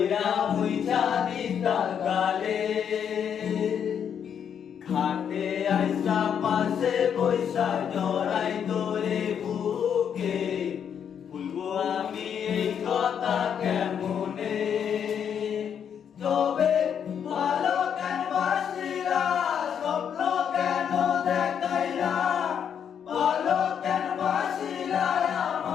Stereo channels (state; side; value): quieter; right; 8.1 dB